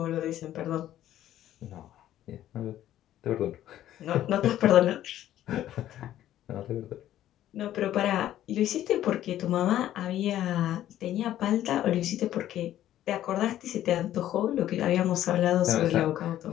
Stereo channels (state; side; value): quieter; right; 12.6 dB